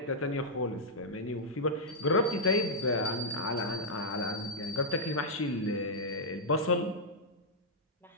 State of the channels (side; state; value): both; normal; correlation -0.06